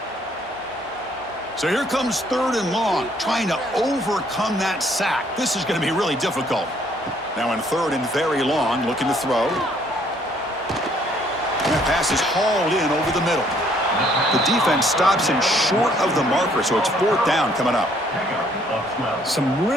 So here comes 3rd and long, trying to overcome that sack. This is going to be really difficult. Now in 3rd and very long, looking to throw. And that pass is hauled in over the middle. The defense stops him short of the marker, so it's 4th down coming up. Some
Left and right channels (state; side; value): normal; both; correlation 0.64